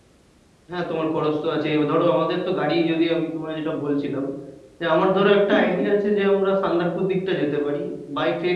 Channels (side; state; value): both; identical; correlation 1.00